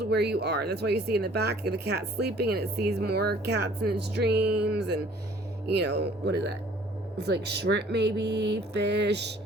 where you are. That's why you see in the back the cat sleeping, and it sees more cats in its dreams, and you know, what is that? It's like shrimp, maybe, fish,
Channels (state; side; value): normal; both; correlation 0.55